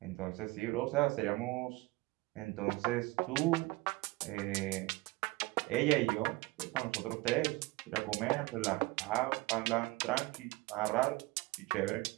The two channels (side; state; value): left; quieter; 22.1 dB